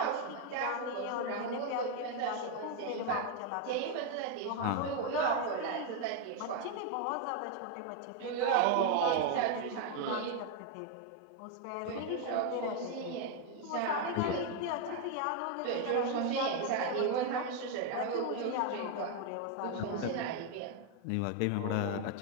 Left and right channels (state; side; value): different; both; correlation 0.01